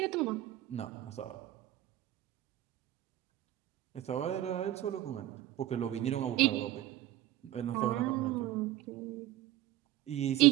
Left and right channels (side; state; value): left; quieter; 14.1 dB